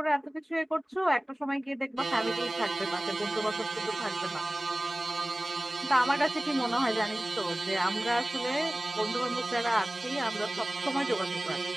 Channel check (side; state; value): both; normal; correlation 0.98